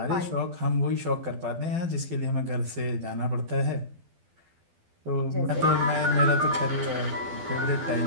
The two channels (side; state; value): left; late; 12 ms